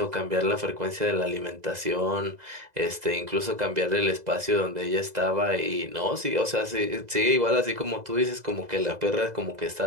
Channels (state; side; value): late; left; 2.0 ms